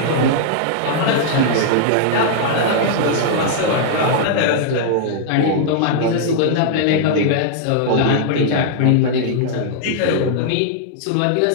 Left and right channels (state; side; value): different; both; correlation -0.01